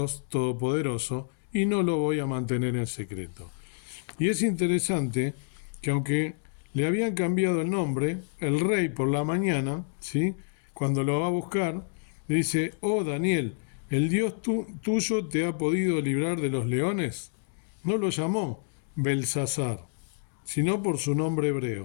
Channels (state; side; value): silent; right; 59 dB below the other